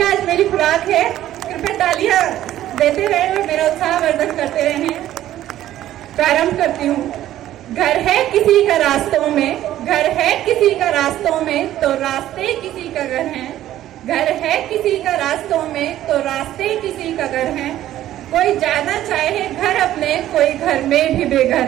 आज मेरी खुराक है। कृपया तालियां देते रहे और मेरा उत्साह वर्धन करते रहे। प्रारंभ करती हूँ। घर है किसी का रास्तों में, घर है किसी का रास्तों में, तो रास्ते किसी का घर है। घर है किसी का रास्तों में, तो रास्ते किसी का घर है। कोई जाना चाहे घर अपने, कोई घर में भी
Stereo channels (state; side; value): quieter; left; 13.1 dB